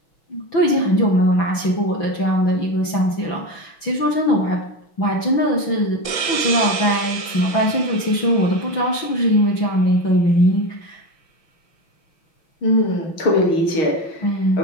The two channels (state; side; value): late; right; 6.0 ms